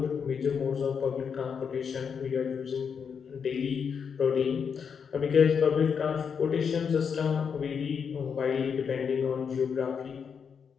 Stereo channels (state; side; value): quieter; right; 6.6 dB